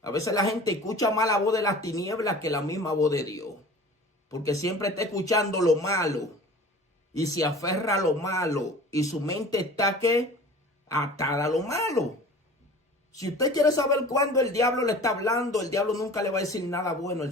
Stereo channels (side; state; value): both; normal; correlation 0.42